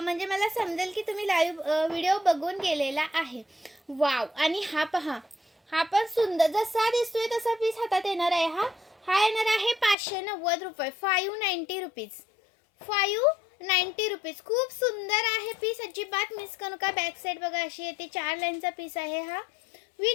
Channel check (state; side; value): drops out; right; at 10.0 s